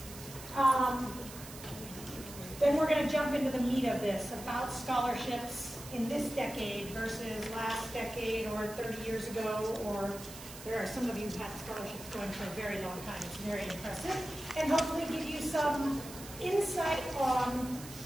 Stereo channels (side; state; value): right; noise; hiss, 14 dB below the sound